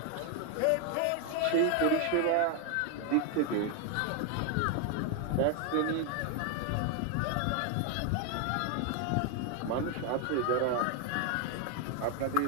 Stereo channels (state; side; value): different; both; correlation 0.01